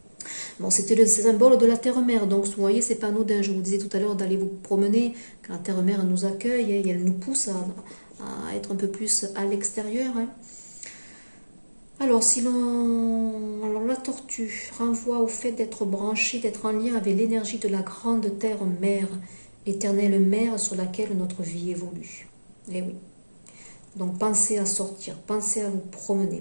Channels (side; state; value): both; inverted; correlation -1.00